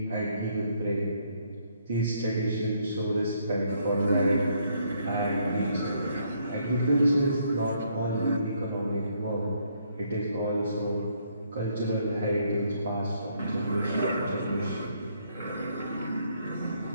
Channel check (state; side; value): inverted; both; correlation -0.70